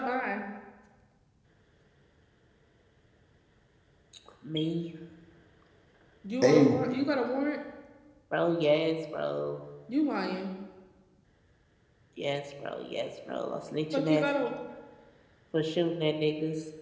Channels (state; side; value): identical; both; correlation 1.00